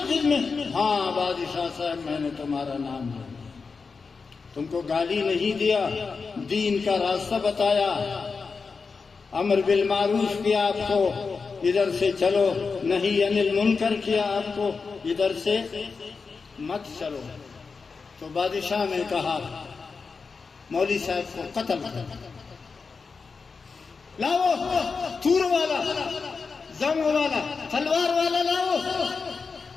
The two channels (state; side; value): quieter; right; 4.8 dB